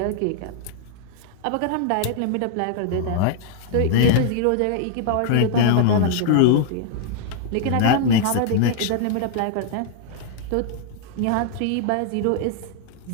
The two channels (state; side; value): different; both; correlation -0.01